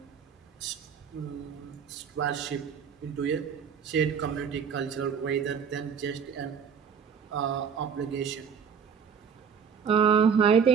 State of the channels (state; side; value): quieter; left; 6.9 dB